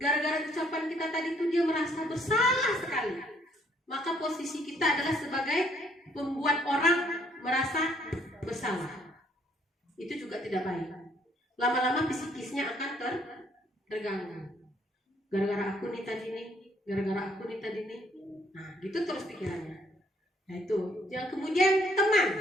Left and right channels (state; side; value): normal; both; correlation 0.66